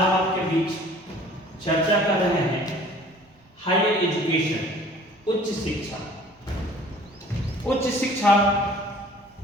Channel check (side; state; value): both; normal; correlation 0.50